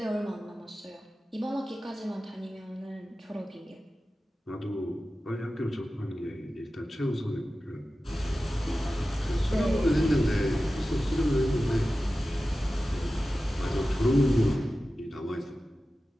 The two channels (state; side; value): normal; both; correlation 0.94